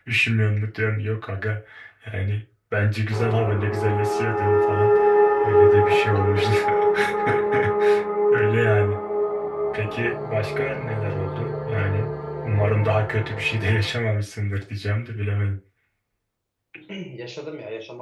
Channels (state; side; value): identical; both; correlation 1.00